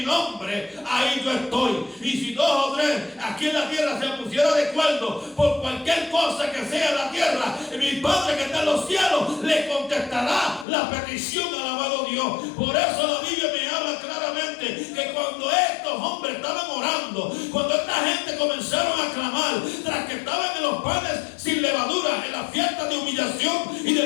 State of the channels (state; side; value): drops out; right; at 10.7 s